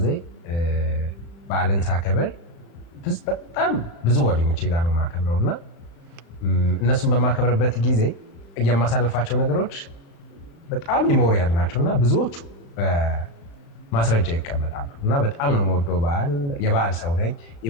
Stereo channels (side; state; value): right; late; 35 ms